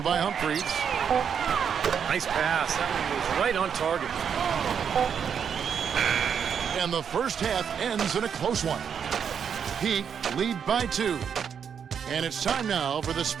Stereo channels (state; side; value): quieter; left; 7.4 dB